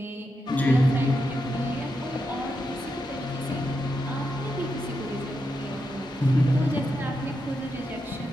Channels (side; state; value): both; normal; correlation 0.85